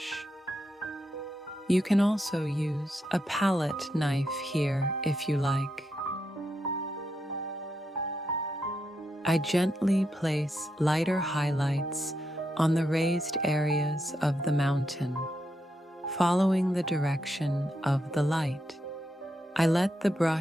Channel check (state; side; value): normal; both; correlation 0.83